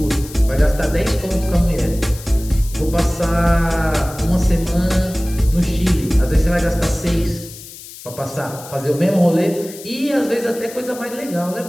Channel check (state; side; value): noise; left; hiss, 16 dB below the sound